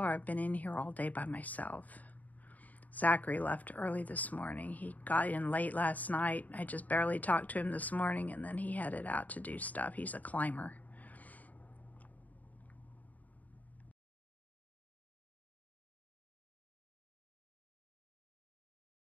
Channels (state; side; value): late; right; 0.076 ms